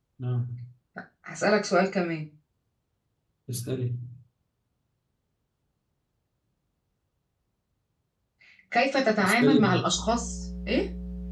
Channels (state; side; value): identical; both; correlation 1.00